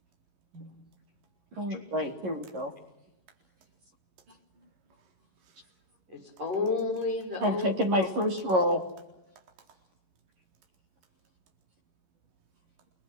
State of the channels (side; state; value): left; late; 11 ms